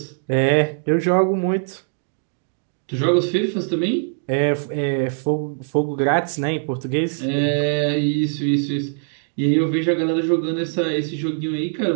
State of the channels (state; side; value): silent; left; digital silence